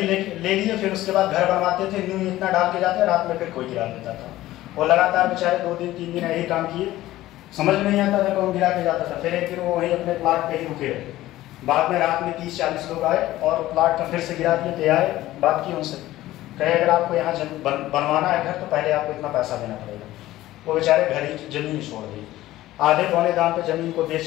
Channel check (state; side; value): quieter; right; 15.6 dB